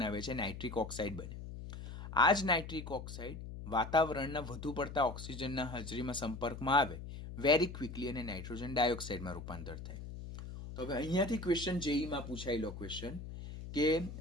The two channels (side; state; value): left; noise; hum, 10 dB below the sound